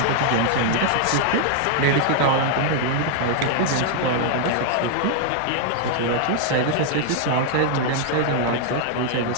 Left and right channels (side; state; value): both; different; correlation 0.00